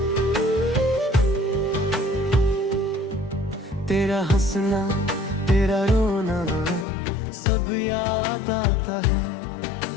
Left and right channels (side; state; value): right; drops out; at 6.9 s